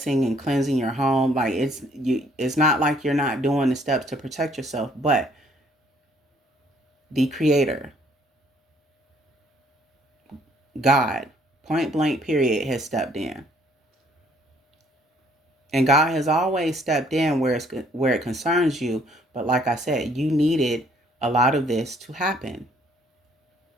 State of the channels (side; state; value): both; normal; correlation 0.63